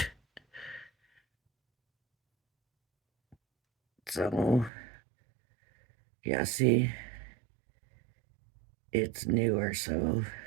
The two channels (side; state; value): left; drops out; at 4.7 s